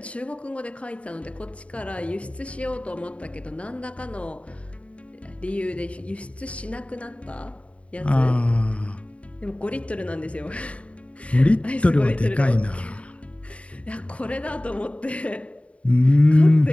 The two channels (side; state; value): right; late; 0.063 ms